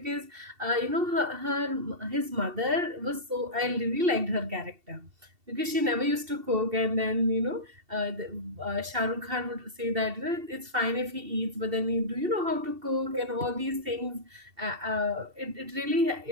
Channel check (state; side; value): late; left; 2.7 ms